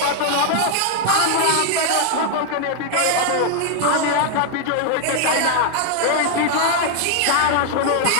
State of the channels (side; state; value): both; different; correlation 0.00